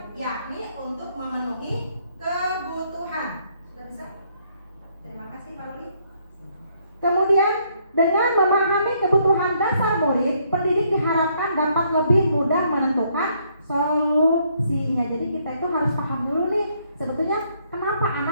yakni untuk memenuhi kebutuhan. Sudah bisa? Terima kasih Pak Luli. Kemudian, dengan memahami kebutuhan dasar murid, pendidik diharapkan dapat lebih mudah menentukan solusinya. Jadi kita itu harus paham dulu nih, sebetulnya kenapa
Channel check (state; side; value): inverted; both; correlation -0.70